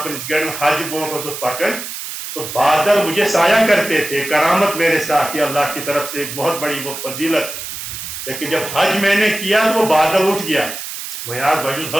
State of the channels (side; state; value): right; noise; hiss, 8 dB below the sound